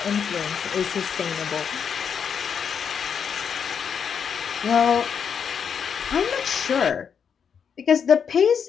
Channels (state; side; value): quieter; right; 7.1 dB